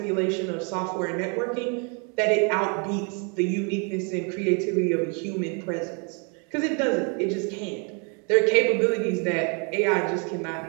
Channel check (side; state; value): left; quieter; 36.3 dB